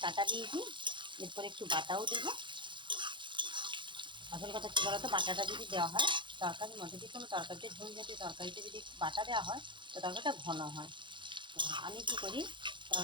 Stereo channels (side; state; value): left; late; 0.23 ms